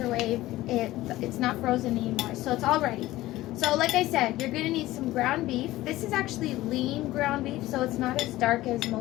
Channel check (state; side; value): quieter; right; 16.8 dB